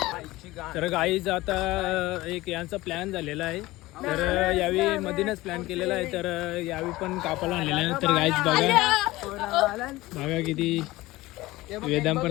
तर गाईज आता एक यांचा प्लॅन झालेला आहे. तर यावेळी मधीनच प्लॅन केलेला आहे. तर यावेळी पण कापाला आणलेला आहे. तर गाईज बघा किती वेदांत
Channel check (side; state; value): right; quieter; 18.9 dB